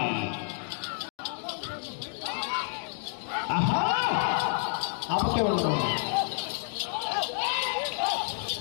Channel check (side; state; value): right; silent; 58 dB below the other